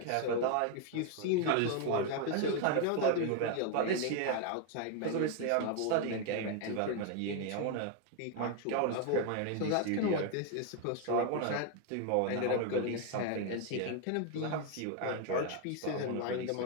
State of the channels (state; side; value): different; both; correlation 0.01